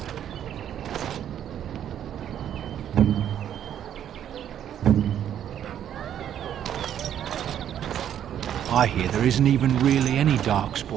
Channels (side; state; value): left; quieter; 10.1 dB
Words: I hear there isn't even really any